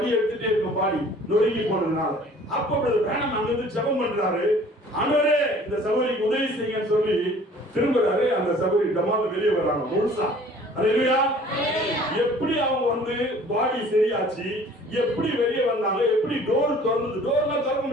எடுத்துட்டே இருக்கும், பாடி நொறுங்கி போனதுனால. அப்ப வேணாம் அங்கிருந்து ஜெபம் பண்றாரு, ஆண்டவரே இந்த சகோதரிக்கு உதவி செய்யுங்கன்னு சொல்லி திரும்புறாரு. அந்த சகோதரி டமால வெளியே வர்றாங்க முழுசா. அல்லேலூயா. எப்படி அவங்க வந்து பாடி சரியாச்சு, எப்படி வெளியே வந்தாங்க, எப்படி டோர் திறந்தது, டோர்லாம் திறக்க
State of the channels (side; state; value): both; normal; correlation 0.51